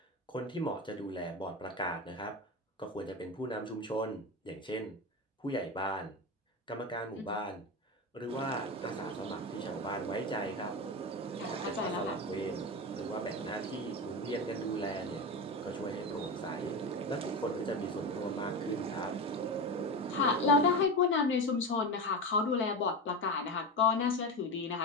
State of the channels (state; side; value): normal; both; correlation 0.21